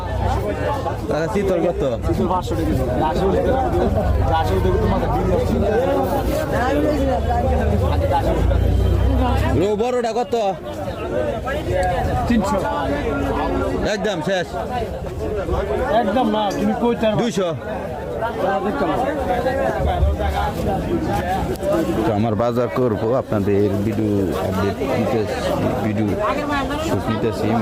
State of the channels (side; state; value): both; identical; correlation 1.00